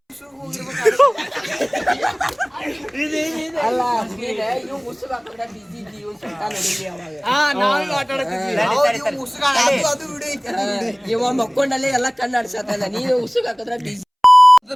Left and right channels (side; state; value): both; identical; correlation 1.00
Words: ಇವ ಮಕ್ಕೊಂಡಲ್ಲೇ ಎಲ್ಲ ಕಣ್ಣಾಡ್ಸತ್ತಲ್ಲ, ನೀನು ಉಸುಗ್ ಹಾಕಿದ್ರೆ ಬಿಸಿ.